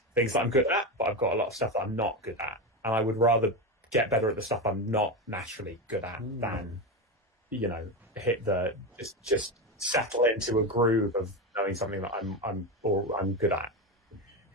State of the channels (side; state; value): both; normal; correlation 0.16